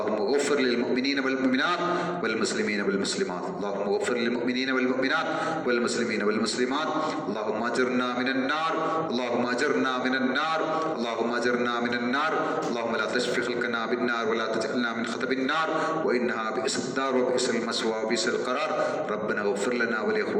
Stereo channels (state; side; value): identical; both; correlation 1.00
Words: ഗഫിർ ലിൽ മുഅ്മിനീന വൽ മുഅ്മിനാത്ത് വൽ മുസ്ലിമീന വൽ മുസ്ലിമാത്ത്. അല്ലാഹുമ്മ ഗഫിർ ലിൽ മുഅ്മിനീന വൽ മുഅ്മിനാത്ത് വൽ മുസ്ലിമീന വൽ മുസ്ലിമാത്ത്. അല്ലാഹുമ്മ അജിർനാ മിനൻ നാർ, അല്ലാഹുമ്മ അജിർനാ മിനൻ നാർ, അല്ലാഹുമ്മ അജിർനാ മിനൻ നാർ. അല്ലാഹുമ്മ ലാ തശ്ഫി ഖൽഖനാ ബിൻ നാർ വലാ തജഅൽനാ മിൻ ഖതബിൻ നാർ വഇന്നഹാ ബിഇസ്ദാർ വബിഇസ്ൽ മസ്വാ വബിഇസ്ൽ ഖറാർ. ربنا اغفر لنا